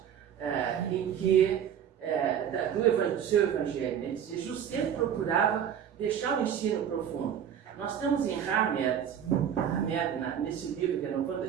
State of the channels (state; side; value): quieter; left; 8.9 dB